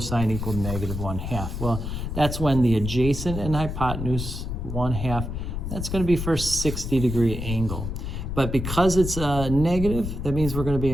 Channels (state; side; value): noise; left; rumble, 5 dB below the sound